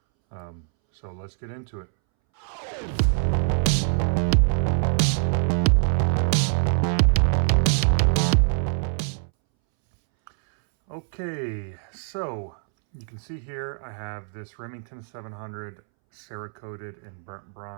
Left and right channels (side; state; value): left; silent; 62 dB below the other